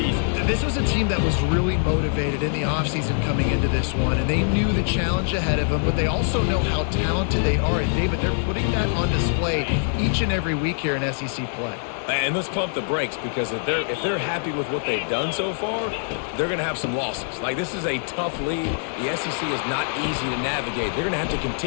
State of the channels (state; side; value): silent; right; 60 dB below the other